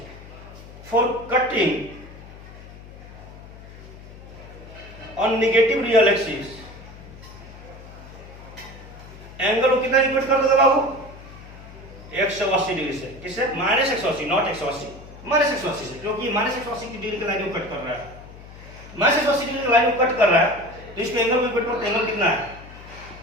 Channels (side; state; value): left; noise; hum, 17 dB below the sound